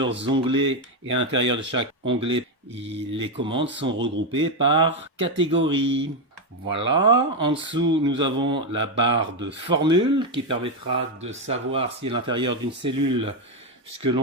onglets et à l'intérieur de chaque onglet, les commandes sont regroupées par catégorie. Voilà, en dessous nous avons la barre de formule qui permettra de savoir si à l'intérieur d'une cellule, ce que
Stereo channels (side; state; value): both; normal; correlation 0.07